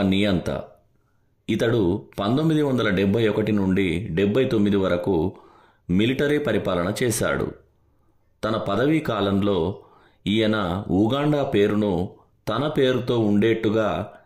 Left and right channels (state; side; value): identical; both; correlation 1.00